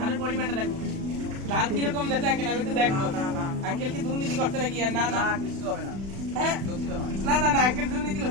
ধানের পরিমাণটা দেখবো, ধান কিরকম দেখে আঙ্কেল, আমি একটু দেখবো। আঙ্কেল কি দুর্নীতি করছে নাকি? আর না না কিছু হবে না। হ্যাঁ না না না আঙ্কেল দুর্নীতি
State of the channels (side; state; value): left; late; 36 ms